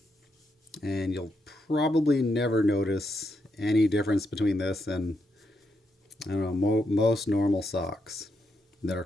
And you'll probably never notice any difference between this and I don't know most normal socks that are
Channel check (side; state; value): both; normal; correlation 0.81